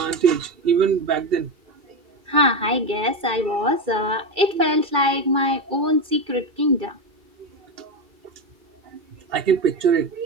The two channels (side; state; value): left; late; 2.3 ms